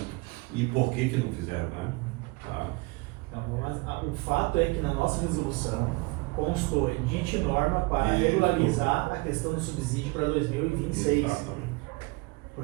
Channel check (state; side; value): quieter; left; 25.1 dB